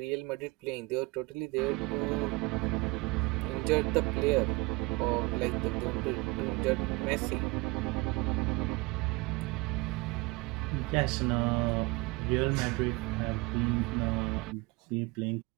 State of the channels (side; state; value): left; quieter; 24.6 dB